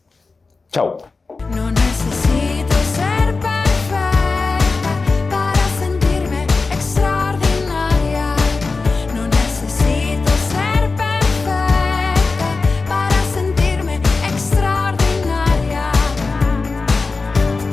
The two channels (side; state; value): right; quieter; 4.0 dB